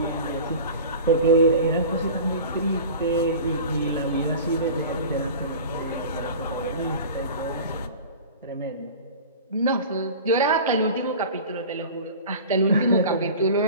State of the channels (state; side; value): inverted; both; correlation -0.37